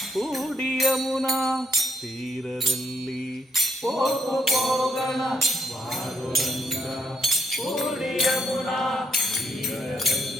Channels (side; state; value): both; normal; correlation 0.73